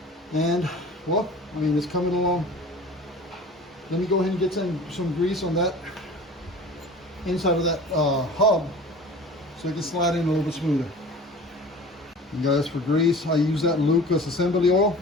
and well, it's coming along. Let me go ahead and get some grease on that inside of that hub so it can slide in a little bit smoother. And guys, for grease, I use that Lucas assembly oil.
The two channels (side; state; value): both; normal; correlation 0.41